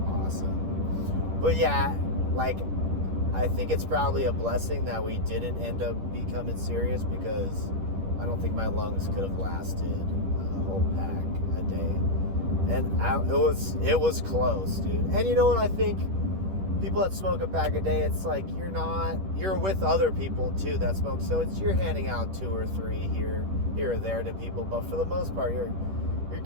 awesome. But yeah, like, I think it's probably a blessing that we didn't end up becoming serious, because I don't think my lungs could have lasted a whole pack a day. And it was close, dude. And you know what I think? People that smoke a pack a day, it's like you're with other people too that smoke. So you're handing out 2 or 3 here or there to people. But for the most part, you're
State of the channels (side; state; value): left; late; 10 ms